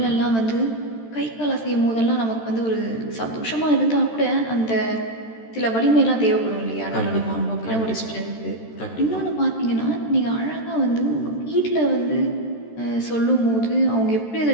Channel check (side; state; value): right; late; 13 ms